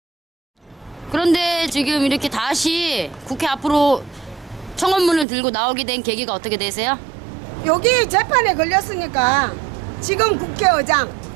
이렇게 다시 국회 앞으로 청원문을 들고 나오게 된 계기가 어떻게 되세요? 여기 재판에 걸렸으니까 지금 국회의장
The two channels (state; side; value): drops out; left; at 5.2 s